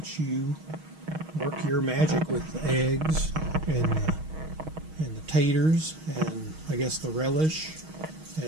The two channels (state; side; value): late; left; 6.3 ms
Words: you work your magic with the eggs and the taters and I guess the relish